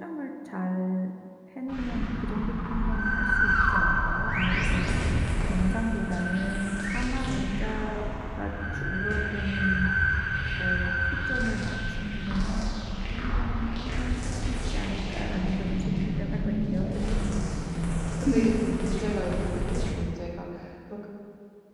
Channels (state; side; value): identical; both; correlation 1.00